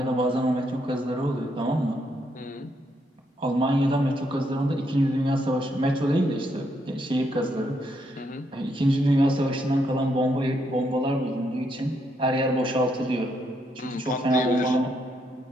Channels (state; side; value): normal; both; correlation 0.76